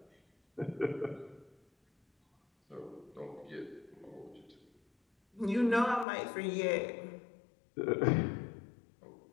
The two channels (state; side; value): drops out; right; at 6.1 s